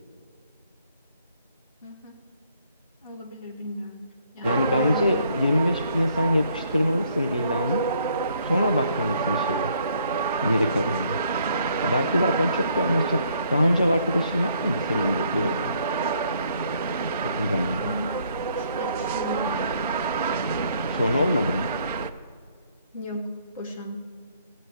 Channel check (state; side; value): inverted; both; correlation -0.67